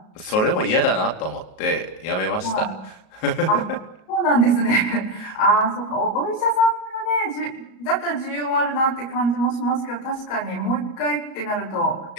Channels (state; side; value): late; right; 37 ms